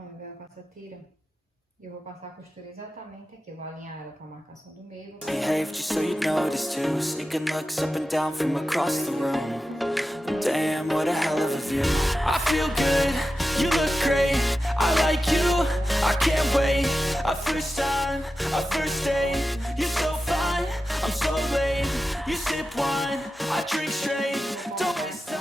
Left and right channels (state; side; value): normal; both; correlation 0.92